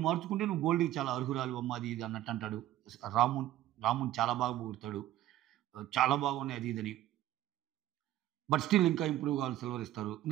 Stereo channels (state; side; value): quieter; left; 13.7 dB